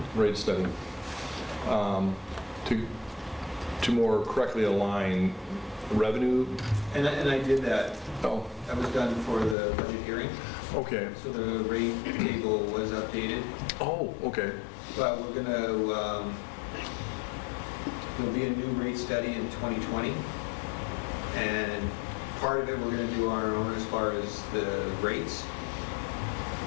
rate study, to more correctly align revenue. And I did that. Oh, That was done for the budget hearing. okay. So the rate table was updated. Oh, okay. But we're going to, there'll be a new rate study in 2020. And part of it we're going to do on our own as far as the rates.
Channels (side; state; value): right; drops out; at 9.6 s